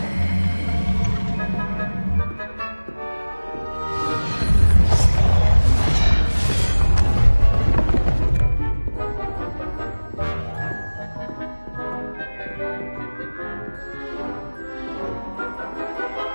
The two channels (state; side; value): inverted; both; correlation -1.00